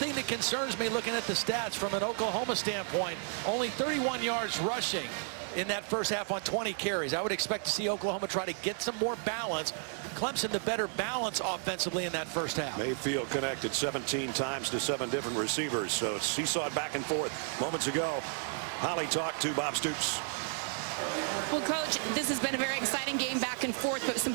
that concerns me looking at the stats from an Oklahoma standpoint, only 31 yards rushing in that first half on 20 carries. I would expect to see Oklahoma try to get some more balance. Clemson the better balance offensively in that first half. Mayfield connected 17 times to 7 different receivers, so seesawed back and forth. Moments ago, Holly talked to Bob Stoops. Well, Coach, this has been a very exciting game back and forth, but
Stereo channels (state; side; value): silent; left; 56 dB below the other